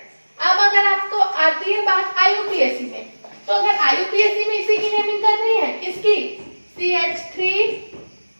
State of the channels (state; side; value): inverted; both; correlation -1.00